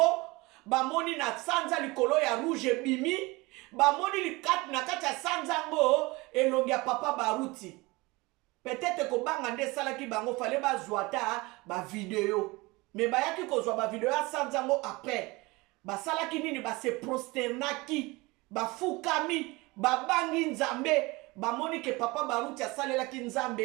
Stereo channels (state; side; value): quieter; left; 23.4 dB